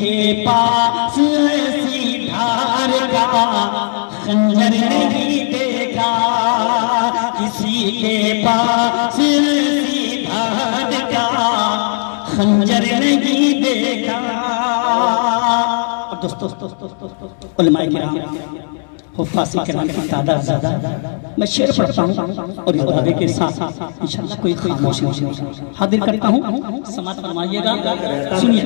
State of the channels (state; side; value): silent; right; 68 dB below the other